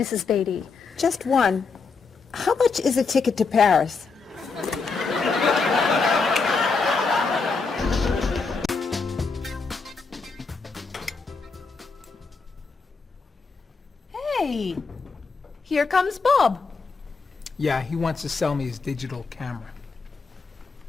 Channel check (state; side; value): quieter; right; 4.5 dB